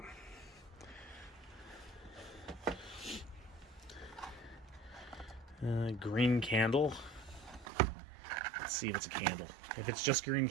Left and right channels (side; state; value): left; drops out; at 7.7 s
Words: Green candle. Let's see if it's a candle. If it's just green